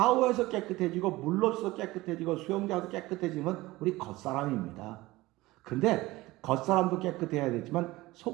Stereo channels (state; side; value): quieter; left; 19.3 dB